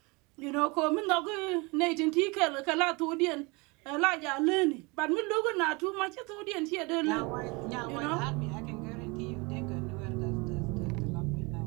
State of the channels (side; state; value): left; quieter; 27.3 dB